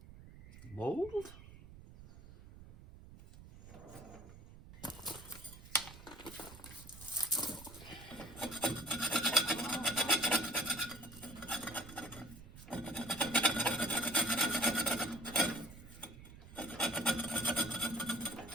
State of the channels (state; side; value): noise; right; rumble, 17 dB below the sound